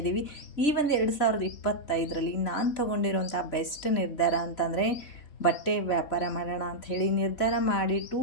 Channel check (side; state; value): right; late; 3.1 ms